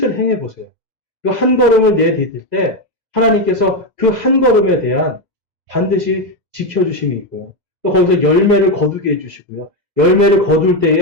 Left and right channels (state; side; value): late; left; 2.0 ms